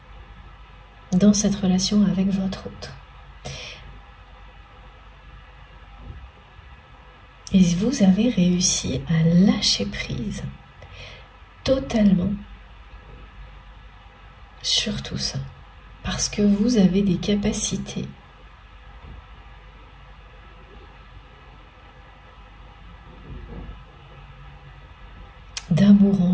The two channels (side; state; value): both; identical; correlation 1.00